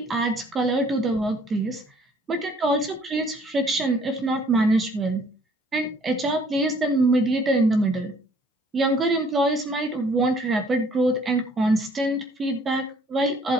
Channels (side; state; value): both; normal; correlation 0.59